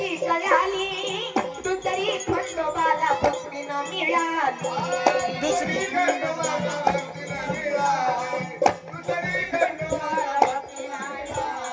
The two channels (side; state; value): both; identical; correlation 1.00